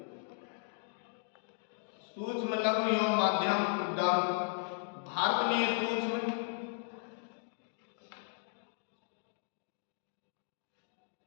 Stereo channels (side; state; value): right; silent; digital silence